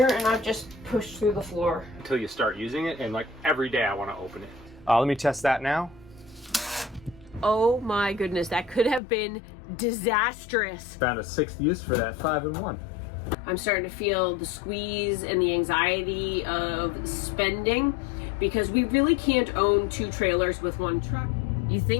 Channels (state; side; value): drops out; right; at 9.0 s